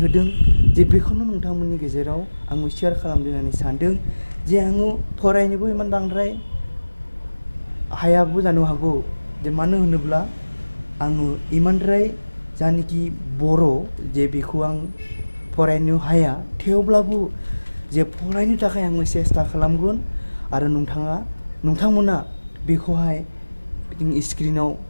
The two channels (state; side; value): inverted; both; correlation -1.00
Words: होदों जे बेखौनो नोंथांमोननि गेजेराव आङो शेयार खालामनो होननानै सानदों। जे आङो फरायनोबो इमान बांद्राय हायाबो जानो हागौ, जे मानो होनोब्ला आङो इमानद्राय जानाखि बर' जे बेखौ आं फरायनो हाया, थेवब्लाबो जे फरायनो थाखाय आङो सेस्था खालामगोन। आरो नोंथांमोना बेखौहाय स्क्रिनाव